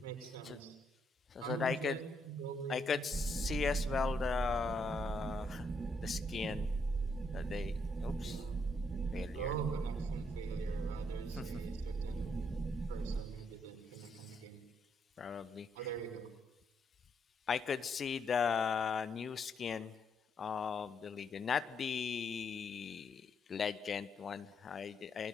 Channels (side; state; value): both; normal; correlation 0.76